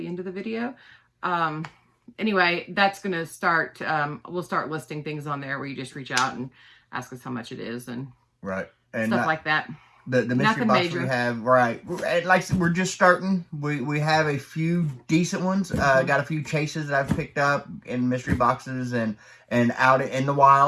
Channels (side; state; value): both; identical; correlation 1.00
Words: end of the video. Anyway, that's going to start, we'll start listing things on there where you just reach out and ask us how much it is and and stuff like that. The mystery box we have, like I said, we're just starting. We have a few decent ones. Got a few chases that I've picked up in mystery boxes and out in the